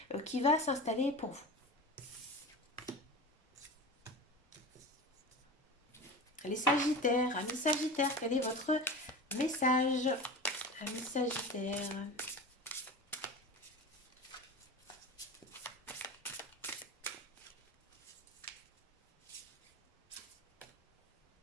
qui va s'installer pour vous. Les Sagittaires, amis Sagittaires, quel est votre message? Amis Sagittaires.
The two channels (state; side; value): normal; both; correlation 0.31